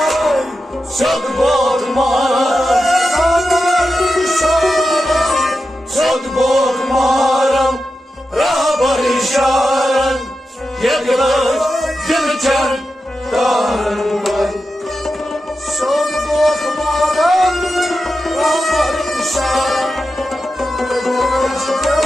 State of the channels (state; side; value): normal; both; correlation 0.90